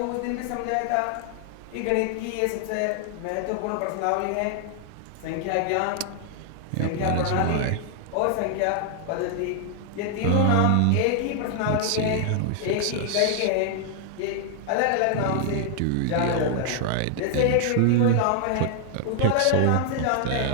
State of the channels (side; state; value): both; different; correlation 0.00